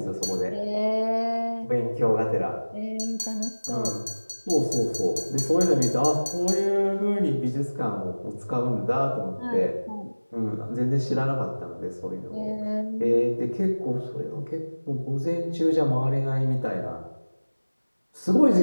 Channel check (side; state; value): both; inverted; correlation -1.00